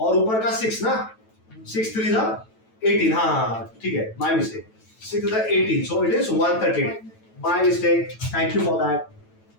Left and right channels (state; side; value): late; right; 9.1 ms